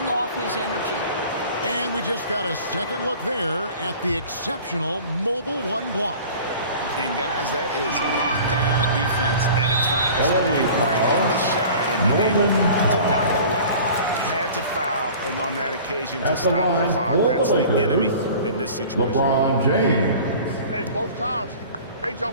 off his energy. And we just got a second look there at the exceptional mobile 1 block. And guys, that is lockdown defense at its finest. Going right at the shot and been able to knock it away. Had to foul, and on that occasion to stop the clock. That's the enemy in this situation. LeBron James. Hey, both times, they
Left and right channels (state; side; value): inverted; both; correlation -0.43